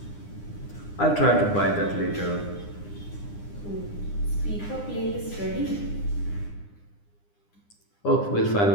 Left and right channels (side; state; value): right; late; 9.8 ms